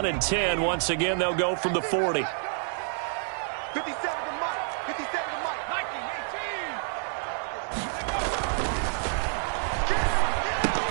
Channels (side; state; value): left; silent; 56 dB below the other